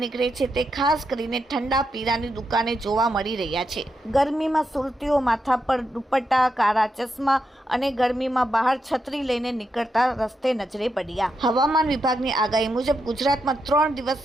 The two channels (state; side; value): normal; both; correlation 0.84